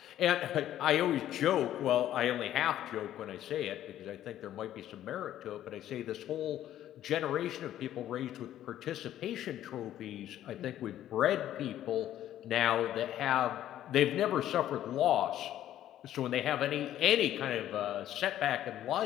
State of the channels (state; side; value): quieter; right; 12.2 dB